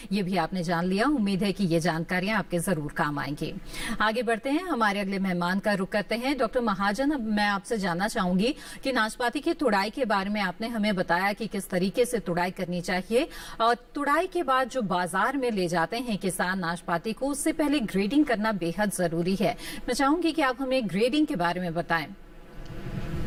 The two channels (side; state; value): both; identical; correlation 1.00